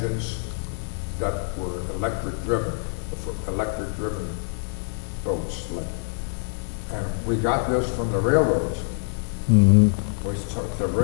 that were electric driven, for electric driven boats. And we got this from the railroads. The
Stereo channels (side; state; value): right; silent; digital silence